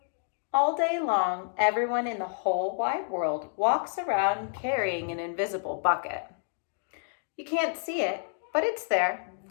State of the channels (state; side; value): silent; right; digital silence